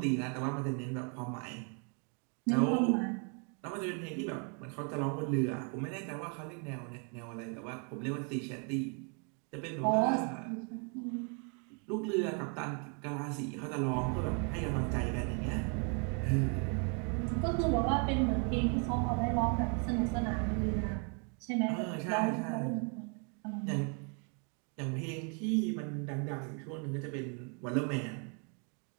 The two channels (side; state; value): left; quieter; 38.2 dB